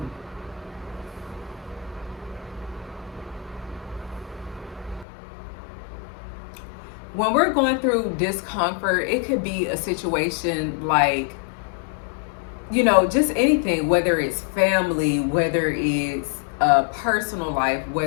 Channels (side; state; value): right; drops out; at 5.1 s